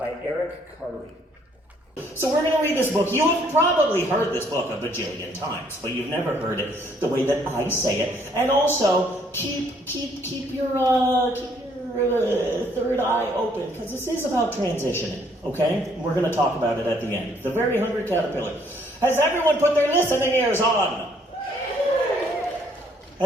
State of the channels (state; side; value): normal; both; correlation 0.65